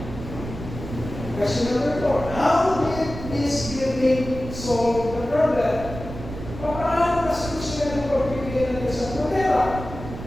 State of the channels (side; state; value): right; noise; rumble, 10 dB below the sound